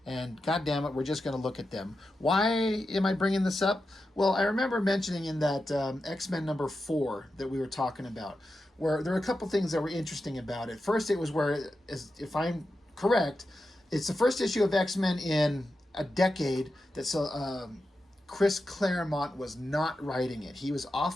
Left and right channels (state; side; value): normal; both; correlation 0.90